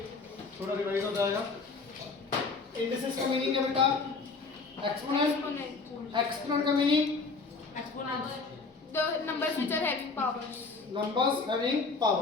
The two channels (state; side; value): quieter; right; 4.2 dB